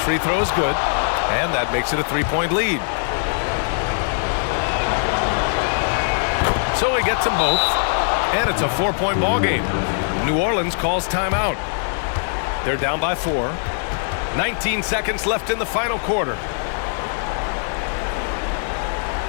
free throw is good, and that makes it a 3-point lead. So he gets them both, and it's a 4-point ball game. New Orleans calls timeout. They're down by 4. 19 seconds left in the final quarter.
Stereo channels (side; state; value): right; silent; digital silence